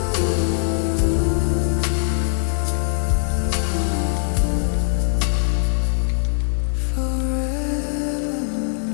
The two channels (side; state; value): right; silent; 65 dB below the other